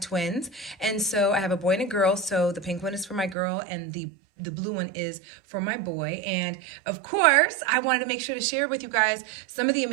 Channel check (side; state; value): left; drops out; at 3.4 s